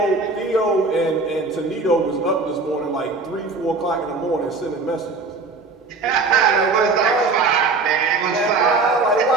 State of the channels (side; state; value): left; quieter; 3.9 dB